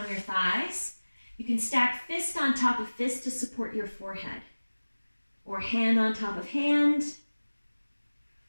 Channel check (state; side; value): inverted; both; correlation -1.00